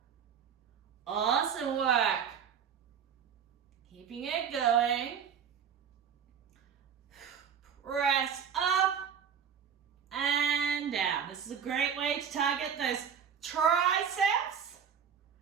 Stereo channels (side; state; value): left; quieter; 7.6 dB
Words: Awesome work. Keeping it going. Press up and down. This is a great way to target those triceps.